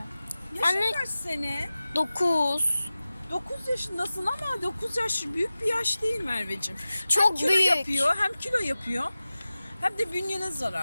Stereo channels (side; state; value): both; inverted; correlation -0.96